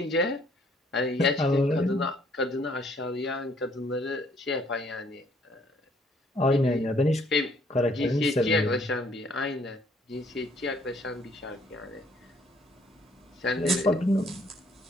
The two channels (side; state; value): both; normal; correlation 0.64